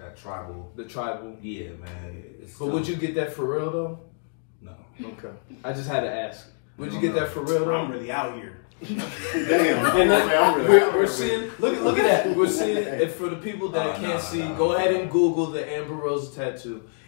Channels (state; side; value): silent; right; 61 dB below the other